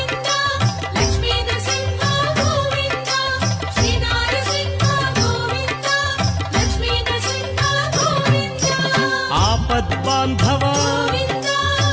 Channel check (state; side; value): identical; both; correlation 1.00